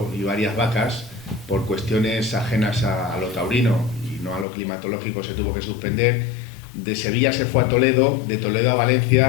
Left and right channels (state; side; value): drops out; right; at 4.5 s